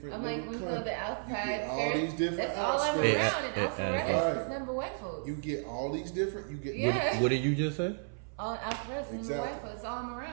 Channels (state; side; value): silent; left; 56 dB below the other